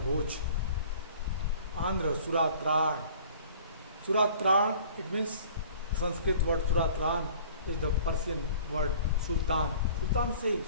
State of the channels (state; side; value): inverted; both; correlation -0.49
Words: Andhra Suratran. Suratran, it means the Sanskrit word Suratran is the Persian word Sultan. Sultan से